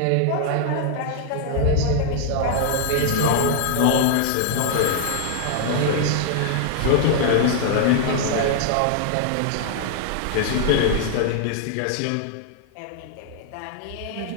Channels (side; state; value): both; different; correlation 0.00